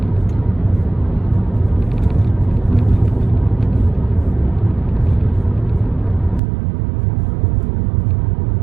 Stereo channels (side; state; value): left; drops out; at 6.4 s